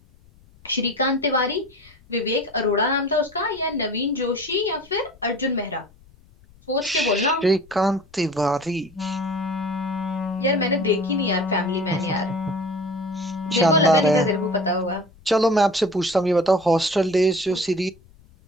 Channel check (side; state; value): left; noise; rumble, 27 dB below the sound